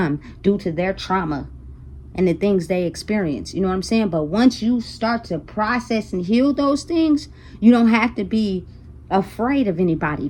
due to their trauma and the things they experience. You know what I'm saying? But once you start to process and heal those things, you don't have to be afraid of anybody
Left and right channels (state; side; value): identical; both; correlation 1.00